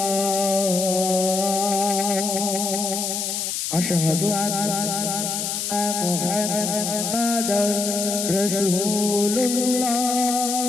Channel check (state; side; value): noise; left; hiss, 2 dB below the sound